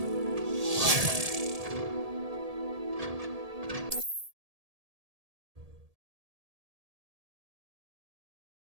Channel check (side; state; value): left; late; 1.7 ms